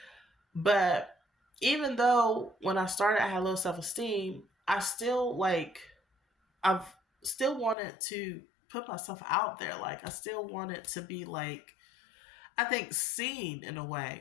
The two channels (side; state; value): right; drops out; at 7.8 s